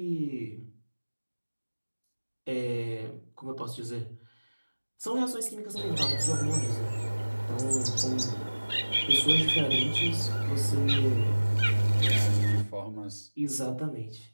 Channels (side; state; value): both; inverted; correlation -1.00